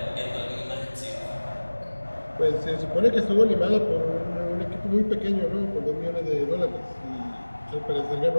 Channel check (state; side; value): inverted; both; correlation -1.00